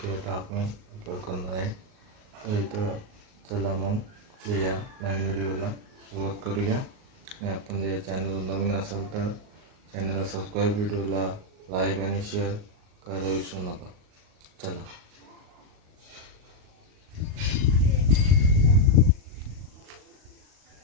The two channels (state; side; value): late; left; 38 ms